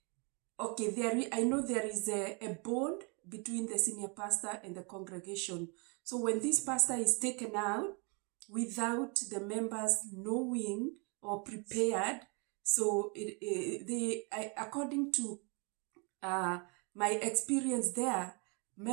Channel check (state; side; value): quieter; left; 33.8 dB